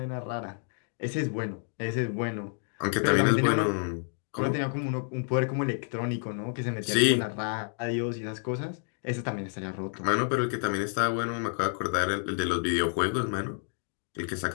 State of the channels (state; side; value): silent; right; 58 dB below the other